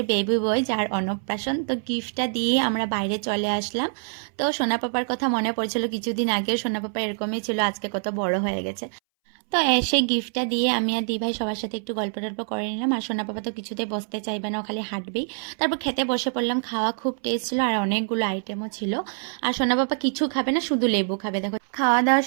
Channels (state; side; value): silent; left; 61 dB below the other